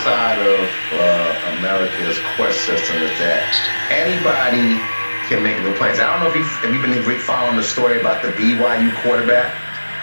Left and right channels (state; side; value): inverted; both; correlation -1.00